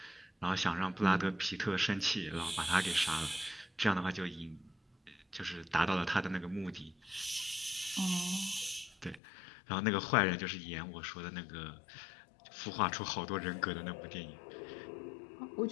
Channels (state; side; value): drops out; right; at 9.2 s